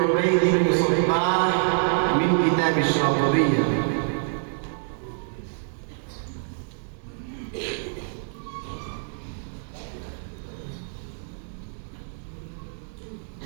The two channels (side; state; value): left; silent; digital silence